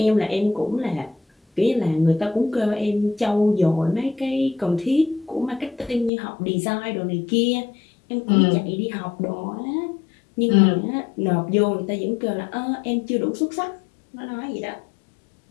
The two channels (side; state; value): right; drops out; at 6.1 s